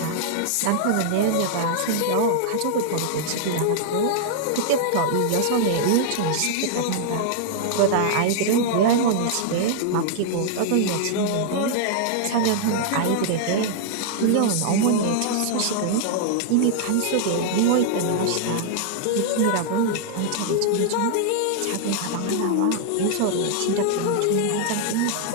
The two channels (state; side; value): different; both; correlation -0.01